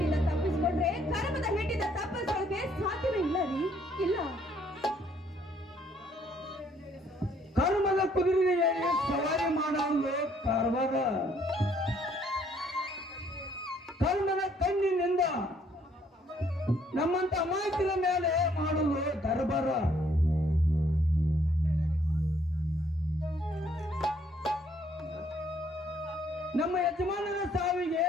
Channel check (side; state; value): both; normal; correlation 0.66